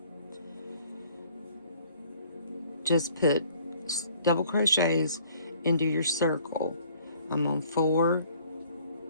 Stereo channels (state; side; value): inverted; both; correlation -0.57